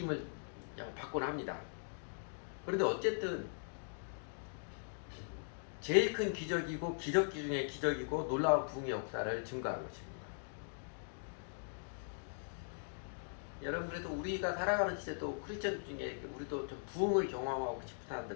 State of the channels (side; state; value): right; silent; digital silence